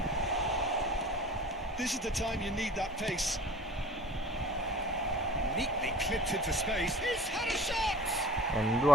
This is the time you need that pace. Neatly clipped into space. He's had a shot!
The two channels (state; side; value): normal; both; correlation 0.41